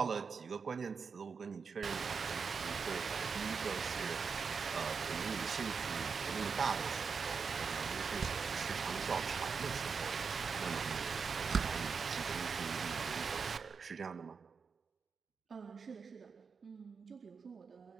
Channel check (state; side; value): quieter; left; 5.5 dB